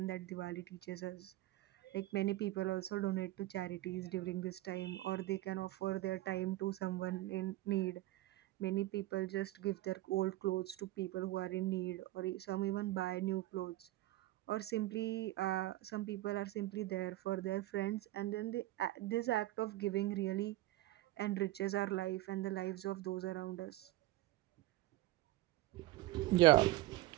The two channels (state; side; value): quieter; left; 16.9 dB